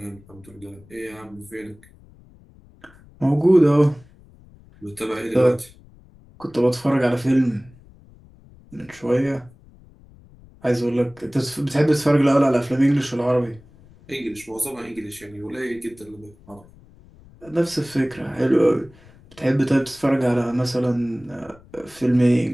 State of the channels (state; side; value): noise; left; rumble, 25 dB below the sound